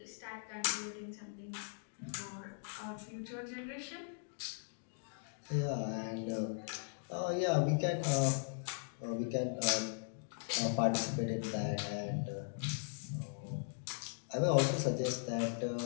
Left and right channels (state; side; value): silent; right; digital silence